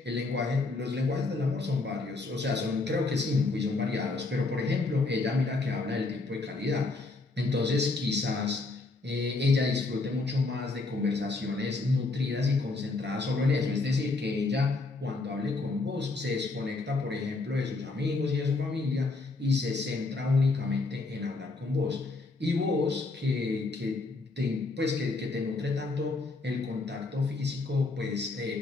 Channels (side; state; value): right; quieter; 3.5 dB